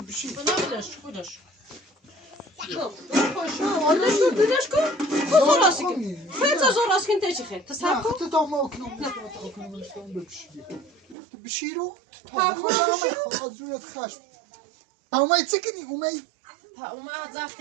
بنا بدش بدش کن خود راست کن خیلی زور راست کن تیچی خیلی تصحیح کن تا ما اکنم بشی رو خواهد زورت خشم اومد چه کنی اومد اومد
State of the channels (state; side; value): drops out; left; at 11.2 s